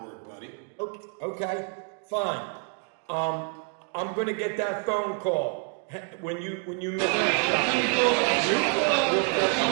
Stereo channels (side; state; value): left; quieter; 39.7 dB